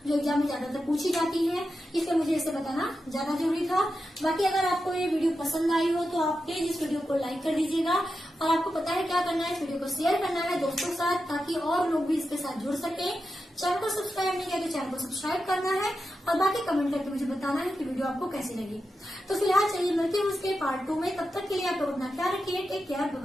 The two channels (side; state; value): both; normal; correlation 0.89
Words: जो एग्जाम में ज्यादातर पूछी जाती है, इसलिए मुझे इसे बताना ज्यादा जरूरी था। बाकी अगर आपको ये वीडियो पसंद आई हो तो आप प्लीज इस वीडियो को लाइक कर दीजिएगा और आपको पता है क्या करना है, इस वीडियो को शेयर करना है दोस्तों के साथ ताकि और लोग भी इसके साथ जुड़ सके। चैनल को सब्सक्राइब नहीं किया तो चैनल को सब्सक्राइब करना है और बाकी कमेंट करके मुझे बताना है कि वीडियो आपको कैसी लगी। तो फिलहाल चलिए मिलते हैं उसके पार्ट 2 में। तब तक के लिए आप लोग अपना ख्याल रखिए। टेक केयर, बाय